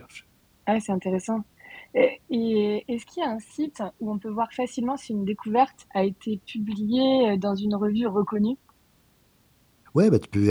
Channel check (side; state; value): both; identical; correlation 1.00